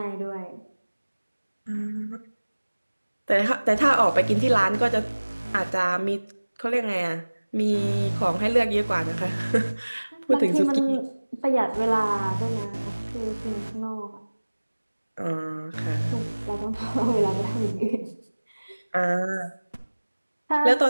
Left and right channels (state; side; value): inverted; both; correlation -1.00